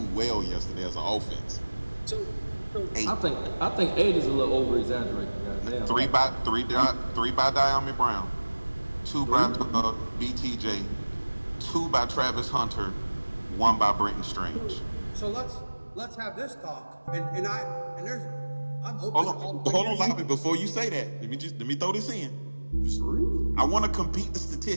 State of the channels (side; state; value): both; inverted; correlation -1.00